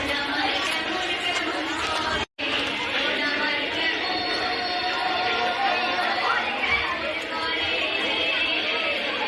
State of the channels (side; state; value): both; identical; correlation 1.00